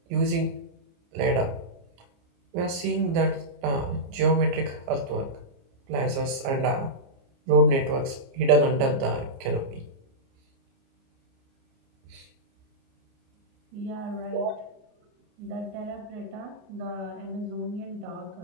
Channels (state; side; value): late; left; 29 ms